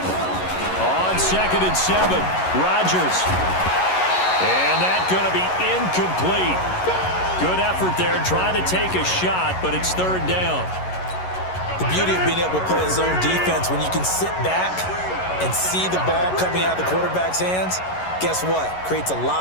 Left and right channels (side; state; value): right; late; 11 ms